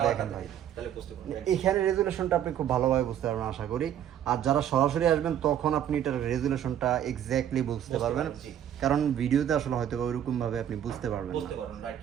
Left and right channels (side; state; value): left; quieter; 10.3 dB